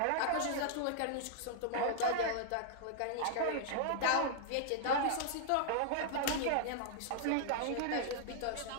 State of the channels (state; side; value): different; both; correlation -0.01